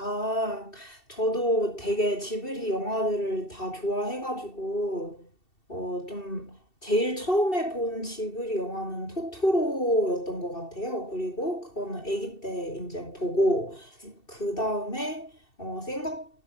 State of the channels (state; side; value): late; right; 2.7 ms